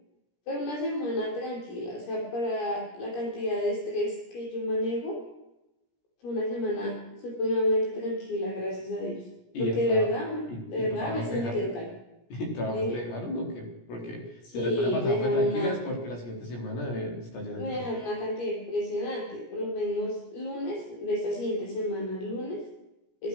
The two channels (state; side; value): late; right; 17 ms